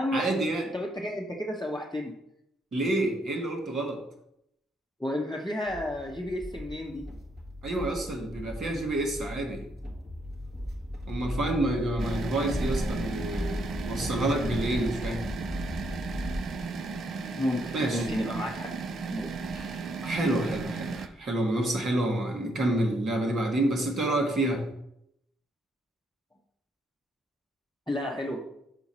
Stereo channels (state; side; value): normal; both; correlation 0.74